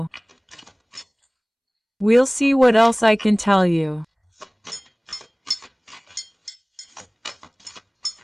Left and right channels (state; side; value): identical; both; correlation 1.00